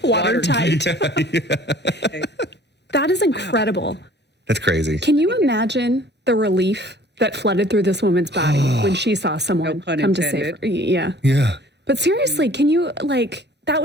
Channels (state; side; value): normal; both; correlation 0.52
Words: Watertight. Okay. That is incredible. That's crazy. Can you imagine the relief that flooded through this woman's body when she saw someone No pun come to save her? intended. Yeah. Yeah. But seriously, can you, that